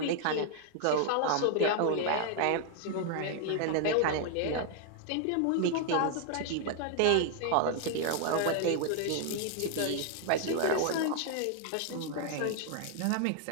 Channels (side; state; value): both; different; correlation 0.00